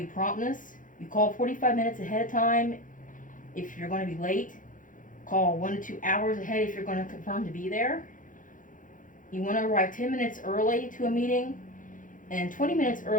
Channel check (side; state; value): right; late; 0.38 ms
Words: promptness. You call 45 minutes ahead of time if you're going to be late. Call 1 to 2 hours ahead if you're going to confirm to be there. You want to arrive 10 minutes early to a meeting, and 20 minutes